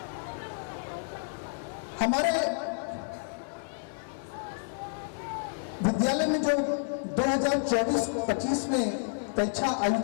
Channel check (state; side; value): silent; right; digital silence